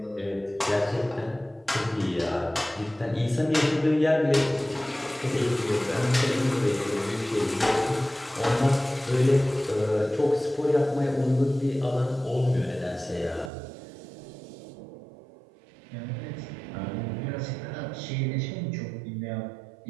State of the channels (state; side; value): drops out; left; at 13.5 s